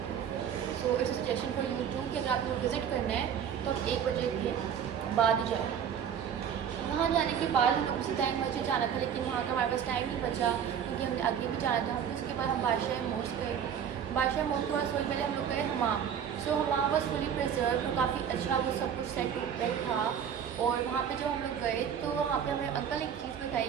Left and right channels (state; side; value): quieter; left; 8.3 dB